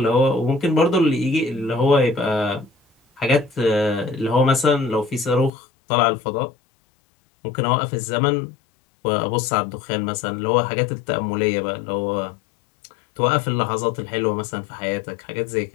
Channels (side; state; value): right; drops out; at 5.5 s